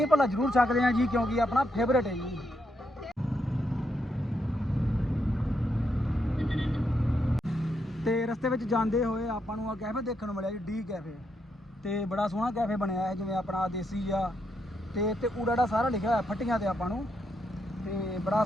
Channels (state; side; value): normal; both; correlation 0.80